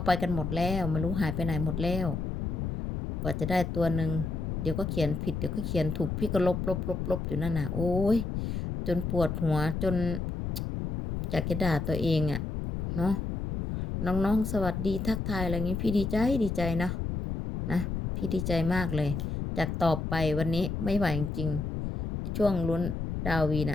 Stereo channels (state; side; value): noise; left; rumble, 3 dB below the sound